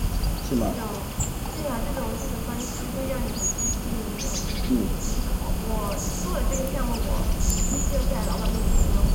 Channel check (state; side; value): identical; both; correlation 1.00